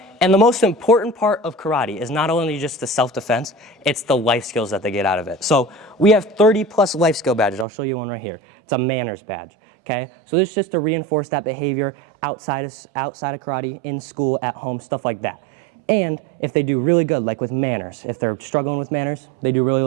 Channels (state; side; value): drops out; left; at 7.7 s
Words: And the most important part of karate is not only just the self-defense, it's the life skills that they get out of it. So we have 30+ life skill badges. I'll show you one right here. It's a manners badge, okay? So this is just to reinforce that behavior outside of karate, in school, at home, stuff like that. And if they do really good, like with manners, if they're struggling with manners, they do